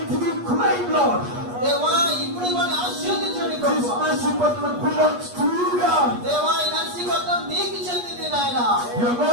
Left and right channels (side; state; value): left; late; 8.4 ms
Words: we claim, Lord. దేవా, ఇప్పుడు వారిని ఆశీర్వదించండి This ప్రభువా. mercy button belongs to you, God. దేవా, ఈ నరసింహత్వం నీకు చెందింది నాయన. You are